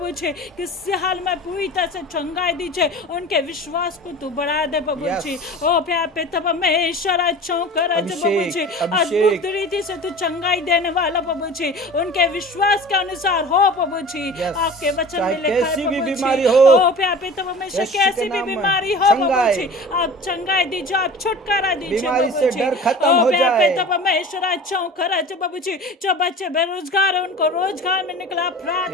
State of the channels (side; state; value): both; normal; correlation 0.38